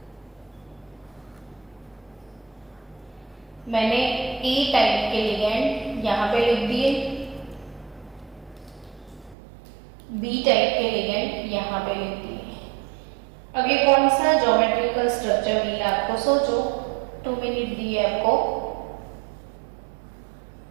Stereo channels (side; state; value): left; drops out; at 9.3 s